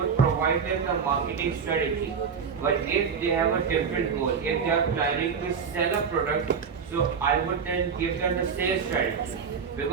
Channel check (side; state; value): left; quieter; 6.3 dB